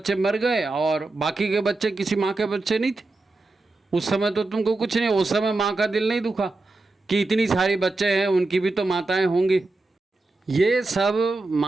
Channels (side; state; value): left; quieter; 3.2 dB